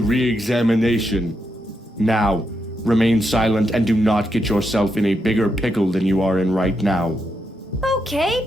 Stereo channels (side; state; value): both; normal; correlation 0.82